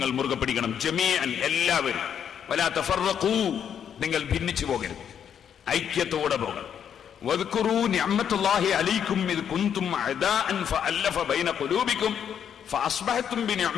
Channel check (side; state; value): right; quieter; 8.5 dB